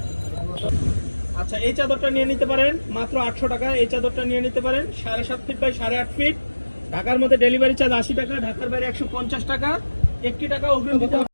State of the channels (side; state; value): both; inverted; correlation -1.00